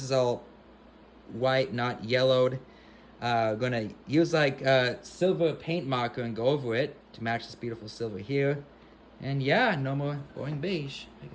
is all white, not yellowed. Gonna use like silver paint marker and go over it to match this beautiful silver here. And yeah, no more boring beige. I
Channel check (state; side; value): identical; both; correlation 1.00